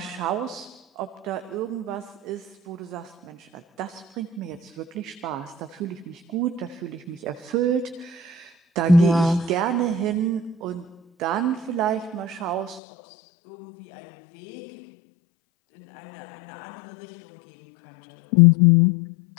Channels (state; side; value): drops out; right; at 12.8 s